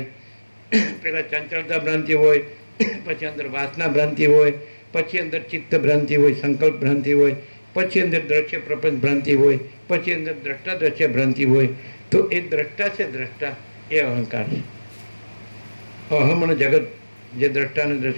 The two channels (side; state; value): both; inverted; correlation -1.00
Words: પહેલાં ચંચળતા ભ્રાંતિ હોય, પછી અંદર વાસના ભ્રાંતિ હોય, પછી અંદર ચિત્ત ભ્રાંતિ હોય, સંકલ્પ ભ્રાંતિ હોય, પછી અંદર દ્રશ્ય પ્રપંચ ભ્રાંતિ હોય, પછી અંદર દ્રષ્ટા દ્રશ્ય ભ્રાંતિ હોય. તો એ દ્રષ્ટા છે, દ્રષ્ટા એ અહંકાર છે. અહમ અને જગત જે દ્રષ્ટા અને